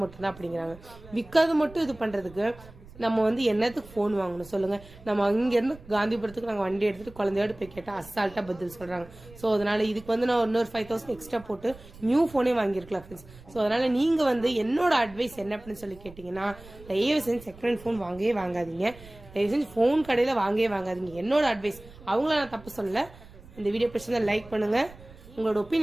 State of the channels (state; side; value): noise; right; rumble, 20 dB below the sound